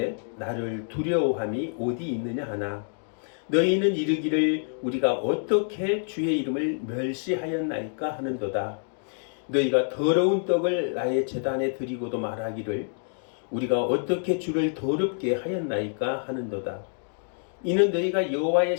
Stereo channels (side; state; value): right; silent; 55 dB below the other